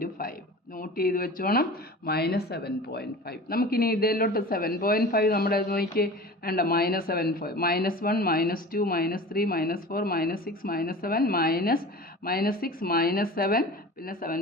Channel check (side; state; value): both; normal; correlation 0.37